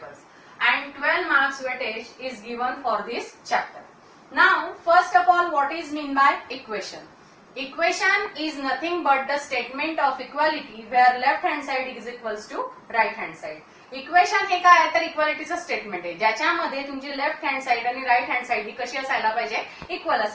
and 12 marks weightage is given for this chapter. Now first of all, what is mean by equation? Equation is nothing but the statement of equality where left hand side is equals to right hand side. Equation हे काय आहे तर इक्वालिटीचं statement आहे ज्याच्यामध्ये तुमची left hand side आणि right hand side ही कशी असायला पाहिजे, इक्वल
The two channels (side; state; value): both; identical; correlation 1.00